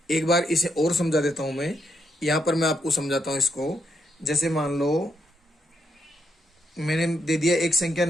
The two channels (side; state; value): both; normal; correlation 0.79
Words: एक बार इसे और समझा देता हूं मैं, यहां पर मैं आपको समझाता हूं इसको। जैसे मान लो मैंने दे दिया एक संख्या